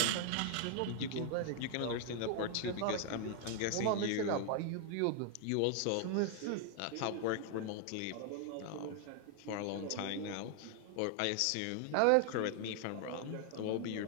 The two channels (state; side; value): different; both; correlation 0.00